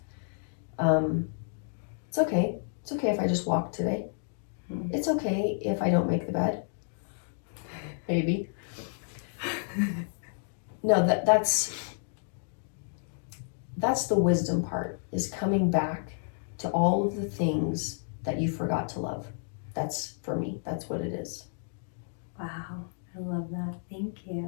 It's okay. It's okay if I just walk today. It's okay if I don't make the bed. Maybe. No, that's the wisdom part, is coming back to all of the things that you forgot to love. That's, for me, that's what it is. Wow, I love that. Thank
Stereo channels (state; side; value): silent; right; digital silence